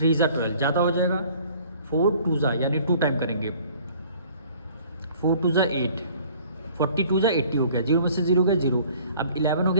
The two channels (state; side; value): inverted; both; correlation -0.54